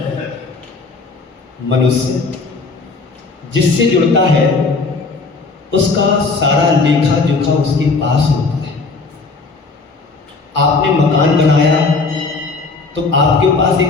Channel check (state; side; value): quieter; right; 4.0 dB